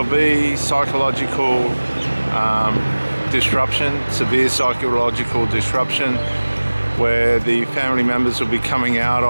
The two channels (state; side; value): inverted; both; correlation -1.00